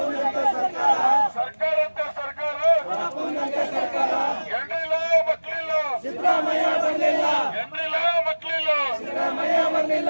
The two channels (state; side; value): inverted; both; correlation -1.00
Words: ಸರ್ಕಾರ, ಸರ್ಕಾರಂತೆ ಸರ್ಕಾರ, ರಪ್ಪುನಂತೆ ಸರ್ಕಾರ. ಎಂಡ್ರಿಲ್ಲ ಮಕ್ಳಿಲ್ಲ, ಸಿದ್ದರಾಮಯ್ಯ ಬರಲಿಲ್ಲ, ಎಂಡ್ರಿಲ್ಲ ಮಕ್ಳಿಲ್ಲ. ಸಿದ್ದರಾಮಯ್ಯ ಬರಲಿಲ್ಲ.